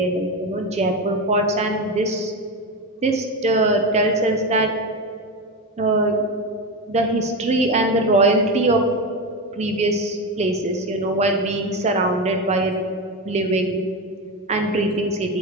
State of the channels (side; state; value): both; normal; correlation 0.17